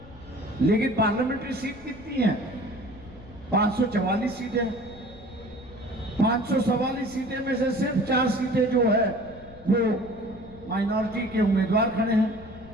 लेकिन पार्लियामेंट्री सीट कितनी है? 544 सीटें. 544 सीटें में से सिर्फ 4 सीटें जो है वो माइनॉरिटी के उम्मीदवार खड़े हैं.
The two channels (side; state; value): left; noise; rumble, 20 dB below the sound